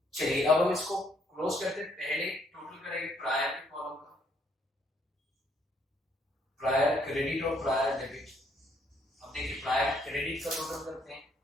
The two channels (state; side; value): normal; both; correlation 0.69